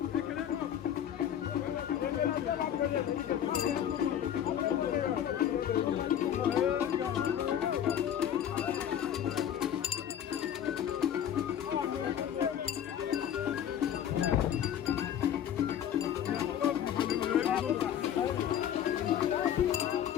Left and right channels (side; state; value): right; quieter; 9.9 dB